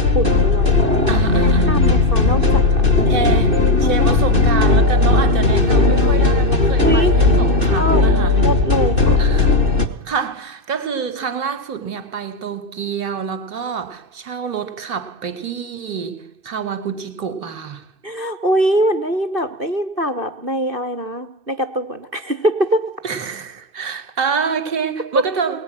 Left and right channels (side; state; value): left; late; 2.6 ms